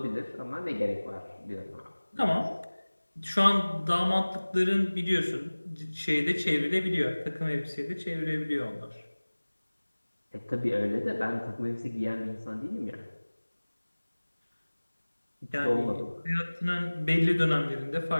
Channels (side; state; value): both; inverted; correlation -1.00